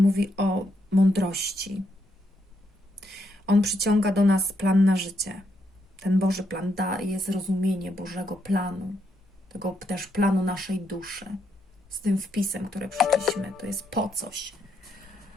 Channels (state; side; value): normal; both; correlation 0.78